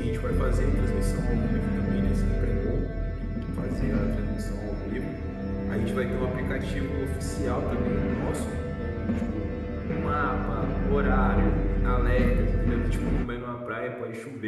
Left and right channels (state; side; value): identical; both; correlation 1.00